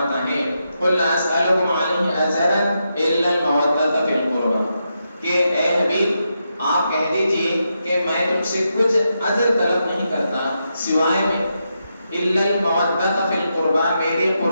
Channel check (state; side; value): inverted; both; correlation -0.84